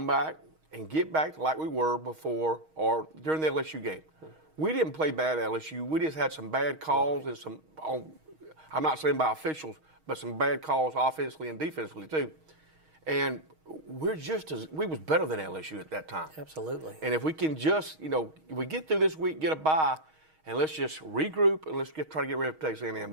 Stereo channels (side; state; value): left; late; 6.4 ms